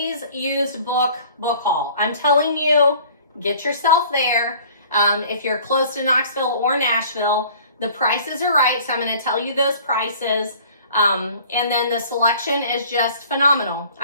used book haul. I'm telling you, get yourself there. If you're close to Knoxville or Nashville, the prices are right. So I'm going to tell you those prices. And then the selection is just phenomenal.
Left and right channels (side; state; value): both; inverted; correlation -0.50